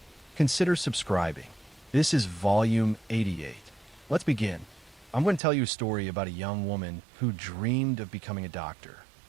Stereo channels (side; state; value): left; drops out; at 5.4 s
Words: consider subscribing. This is Volume 88. Let's begin. I'm going to tell you a story about a young woman who dreamed of becoming a doctor,